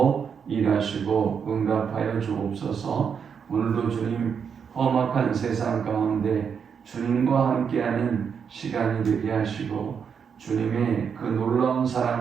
일하시고 응답하여 주옵소서. 오늘도 주님 험악한 세상 가운데 주님과 함께하는 시간이 되게 하시고 주님의 그 놀라운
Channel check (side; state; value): left; quieter; 6.8 dB